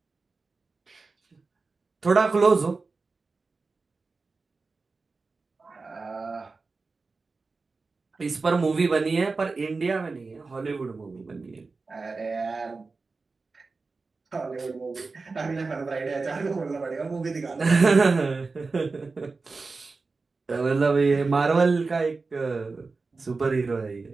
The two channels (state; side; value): quieter; left; 4.0 dB